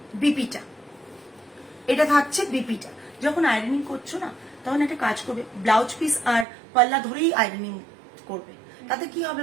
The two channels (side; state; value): left; drops out; at 6.5 s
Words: বিপিটা, এটা থাকছে বিপিটা। যখন আয়রনিং করছো না, তখন একটা কাজ করবে, ব্লাউজ পিস আর পাল্লা ধরেই আয়রনিং করবে। তাতে কি হবে